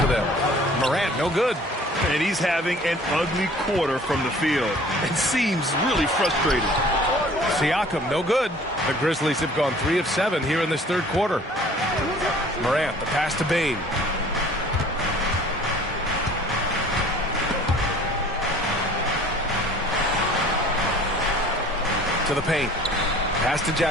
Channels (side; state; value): both; normal; correlation 0.50